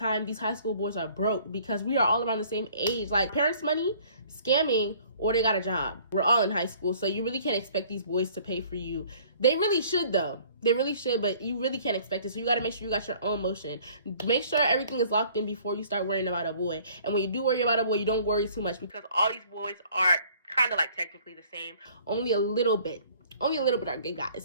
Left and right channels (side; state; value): both; inverted; correlation -0.55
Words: these high school boys are broke because we are all around the same age. Like, parents' money, scamming, or they got a job. We're all in high school, so you really can't expect these boys to pay for you. They really should, though. They really should, but you really can't expect it. So you got to make sure you got your own motion. Make sure everything is locked in before you start worrying about a boy. And when you do worry about a boy, you don't worry too much because all these boys are kind of like technically the same. Only a little bit are gay